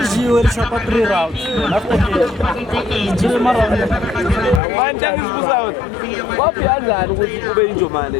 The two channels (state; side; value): drops out; right; at 4.6 s